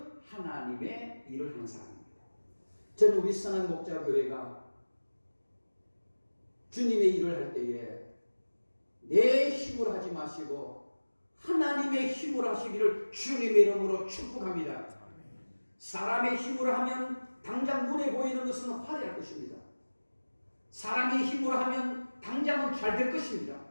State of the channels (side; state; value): both; inverted; correlation -1.00